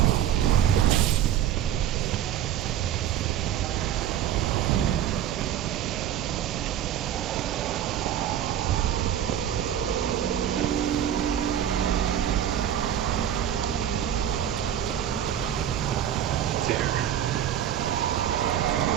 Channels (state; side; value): quieter; left; 10.4 dB